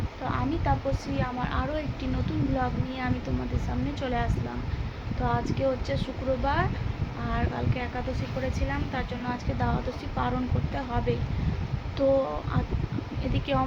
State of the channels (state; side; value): identical; both; correlation 1.00